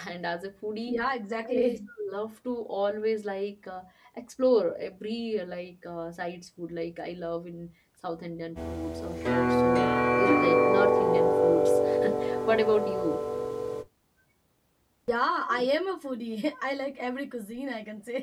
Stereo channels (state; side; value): identical; both; correlation 1.00